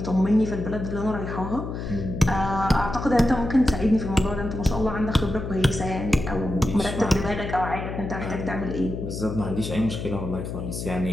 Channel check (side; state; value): left; noise; hum, 6 dB below the sound